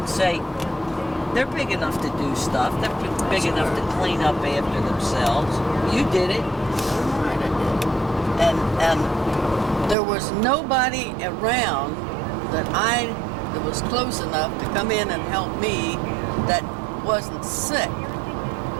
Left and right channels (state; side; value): drops out; left; at 10.0 s